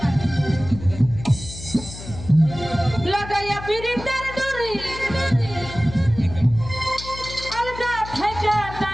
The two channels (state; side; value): noise; left; hum, 12 dB below the sound